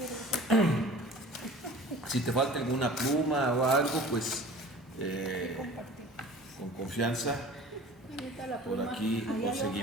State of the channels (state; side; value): normal; both; correlation 0.43